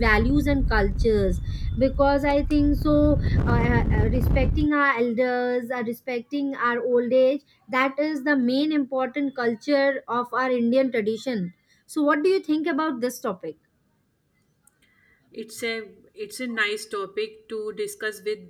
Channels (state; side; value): identical; both; correlation 1.00